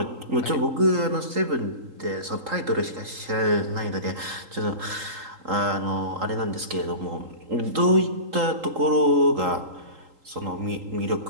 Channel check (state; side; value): late; left; 3.8 ms